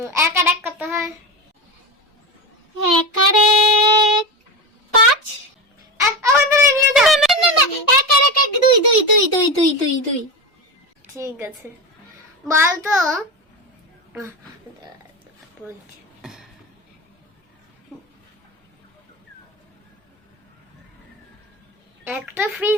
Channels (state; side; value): normal; both; correlation 0.20